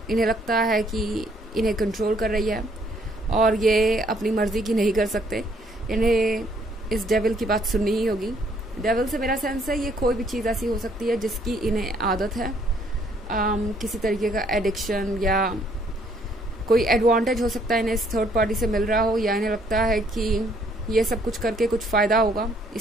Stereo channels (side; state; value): both; normal; correlation 0.66